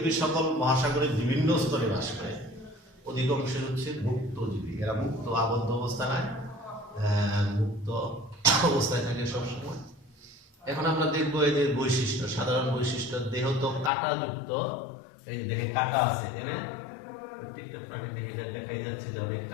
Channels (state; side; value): drops out; right; at 13.9 s